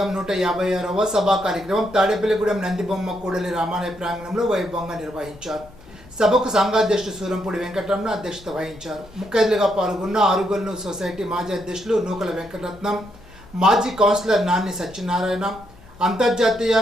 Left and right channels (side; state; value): left; noise; hum, 24 dB below the sound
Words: 156వ సభా కార్యక్రమం తాడేపల్లిగూడెం నందిబొమ్మ కూడలి రామాలయ ప్రాంగణంలో వైభవంగా నిర్వహించారు. సభకు సంఘాధ్యక్షుడు సూరంపూడి వెంకటరమణ అధ్యక్షత వహించారు. ముఖ్య అతిథిగా పాల్గొన్న ఆరుగొల్లు సొసైటీ మాజీ అధ్యక్షులు నూకల వెంకటరత్నం, మాజీ కౌన్సిలర్ నాన్ని సత్యనారాయణ, అంతర్జాతీయ